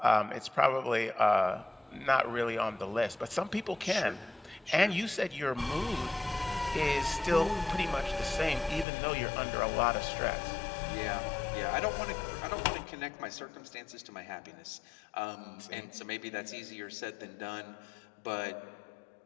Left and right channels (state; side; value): drops out; right; at 8.8 s